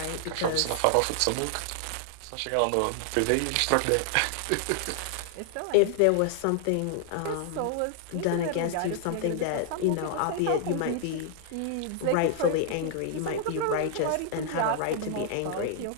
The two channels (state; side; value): different; both; correlation 0.00